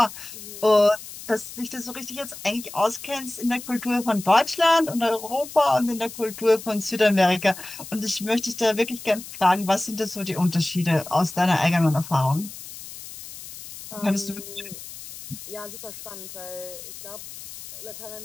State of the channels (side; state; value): left; noise; hiss, 13 dB below the sound